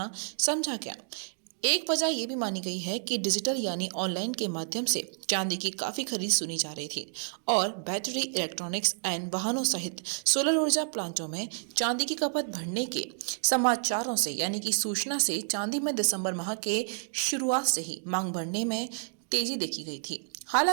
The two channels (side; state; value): left; silent; digital silence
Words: समझा गया। एक वजह यह भी मानी गई है कि डिजिटल यानी ऑनलाइन के माध्यम से चांदी की काफी खरीद सुनी जा रही थी और बैटरी, इलेक्ट्रॉनिक्स एंड वाहनों सहित सोलर ऊर्जा प्लांटों में चांदी की खपत बढ़ने के समाचारों से यानी कि सूचना से चांदी में दिसंबर माह के शुरुआत से ही मांग बढ़ने में तेजी देखी गई थी।